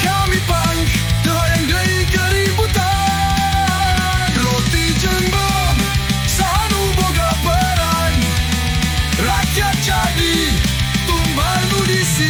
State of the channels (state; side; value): identical; both; correlation 1.00